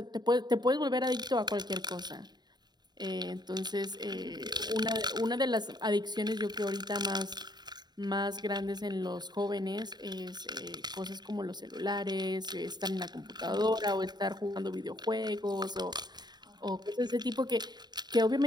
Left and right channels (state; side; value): late; left; 0.20 ms